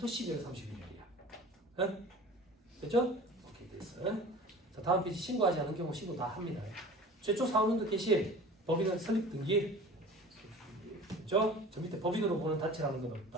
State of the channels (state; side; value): normal; both; correlation 0.41